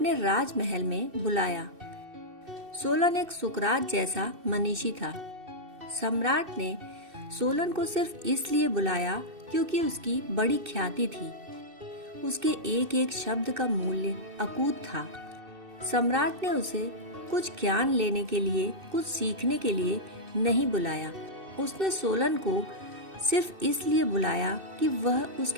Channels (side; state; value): left; late; 2.6 ms